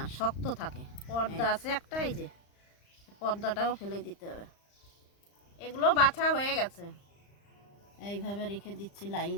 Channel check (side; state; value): right; late; 35 ms